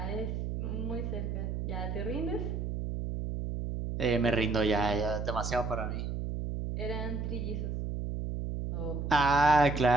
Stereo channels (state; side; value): noise; right; hum, 3 dB below the sound